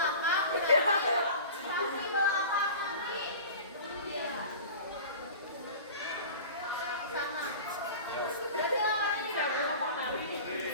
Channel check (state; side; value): inverted; both; correlation -0.38